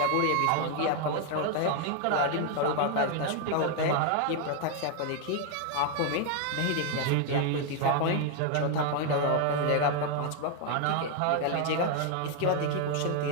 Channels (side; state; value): both; different; correlation 0.00